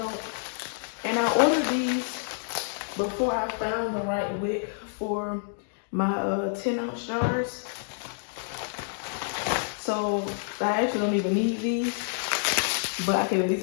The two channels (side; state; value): right; silent; digital silence